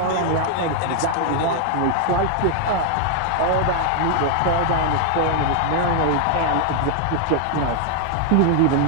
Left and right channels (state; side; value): different; both; correlation 0.00